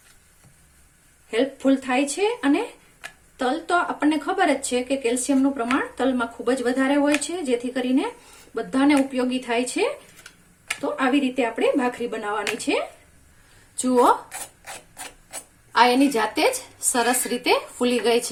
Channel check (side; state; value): both; identical; correlation 1.00